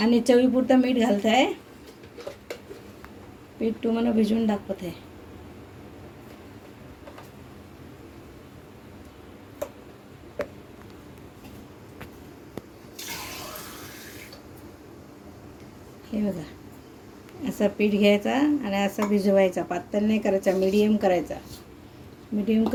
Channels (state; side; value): identical; both; correlation 1.00